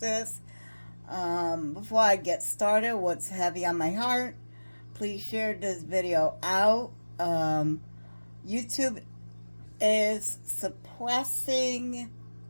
Before I get started, what's heavy on my heart, please share this video out. YouTube is suppressing,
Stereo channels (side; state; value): both; inverted; correlation -1.00